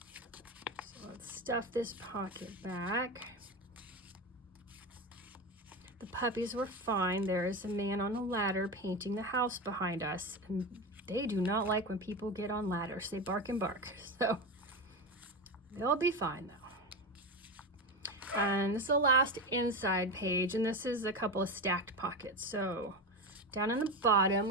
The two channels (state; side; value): normal; both; correlation 0.19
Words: So let's stuff this pocket back. The puppies were fine. There is a man on a ladder painting the house behind us, and they do not like when people get on ladders. They bark and bark. So they'll be fine though. And this is the last inside page, and this is a couple of stacked pockets. So down in the bottom,